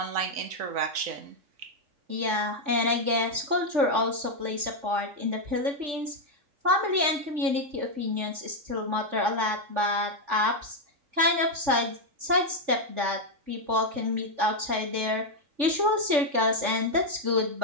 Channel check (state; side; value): late; left; 3.4 ms